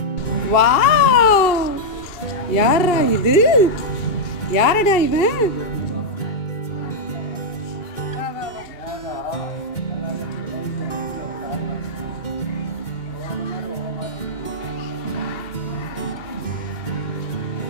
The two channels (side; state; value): right; late; 2.7 ms